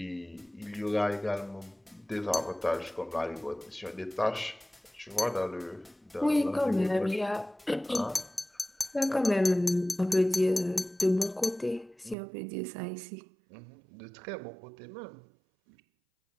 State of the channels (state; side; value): drops out; left; at 12.2 s